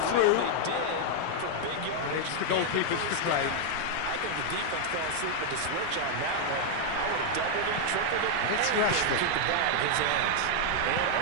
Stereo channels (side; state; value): both; different; correlation 0.00